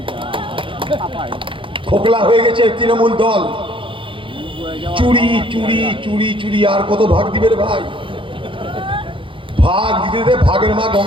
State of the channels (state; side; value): late; left; 0.25 ms